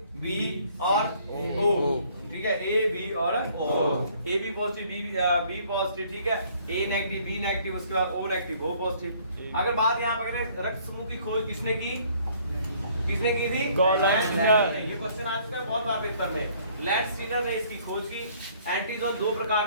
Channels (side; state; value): both; inverted; correlation -0.60